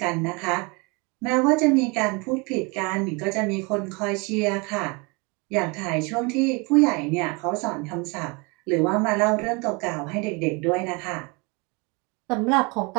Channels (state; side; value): quieter; left; 29.1 dB